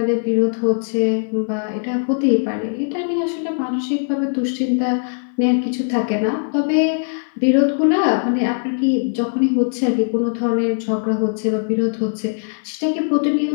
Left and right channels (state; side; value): silent; right; 60 dB below the other